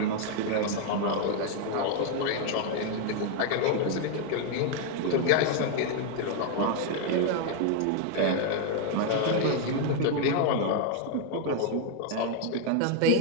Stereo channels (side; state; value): both; different; correlation 0.01